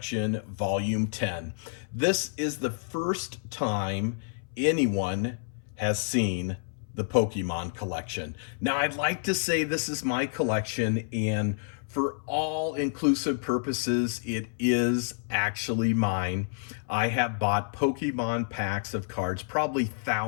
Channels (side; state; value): right; silent; 59 dB below the other